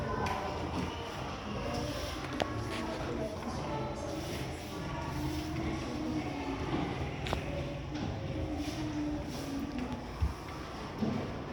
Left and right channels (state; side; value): identical; both; correlation 1.00